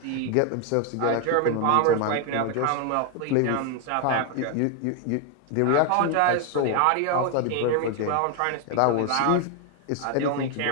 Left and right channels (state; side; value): different; both; correlation 0.01